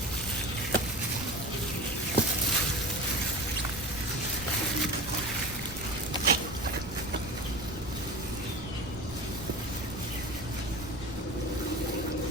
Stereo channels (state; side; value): noise; left; rumble, 13 dB below the sound